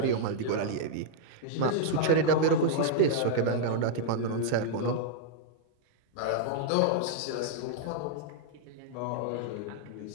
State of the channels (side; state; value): both; different; correlation -0.01